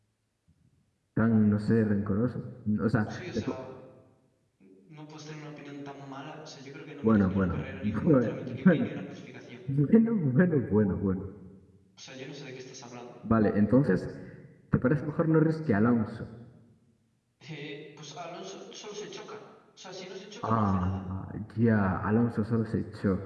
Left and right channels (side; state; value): both; identical; correlation 1.00